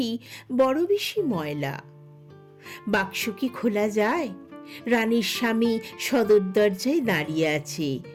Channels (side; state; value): both; identical; correlation 1.00